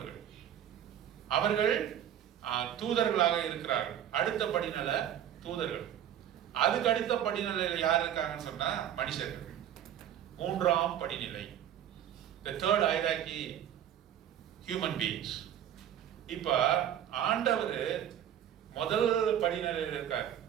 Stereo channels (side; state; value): left; quieter; 10.5 dB